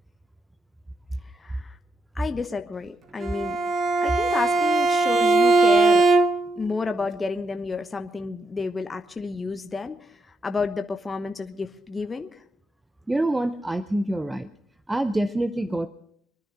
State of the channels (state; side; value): normal; both; correlation 0.82